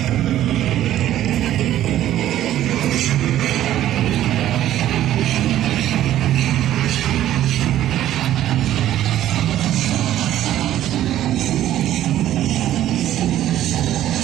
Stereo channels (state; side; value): quieter; left; 12.7 dB